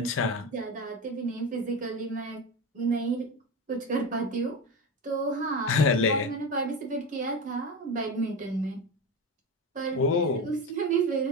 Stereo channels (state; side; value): normal; both; correlation 0.22